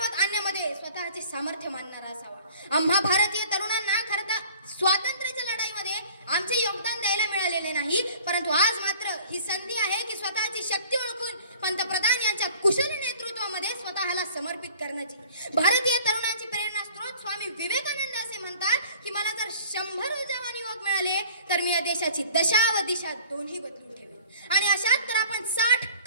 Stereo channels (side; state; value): both; inverted; correlation -0.49